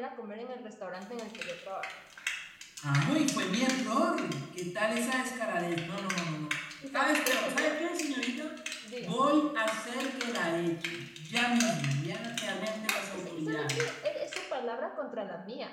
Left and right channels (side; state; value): both; identical; correlation 1.00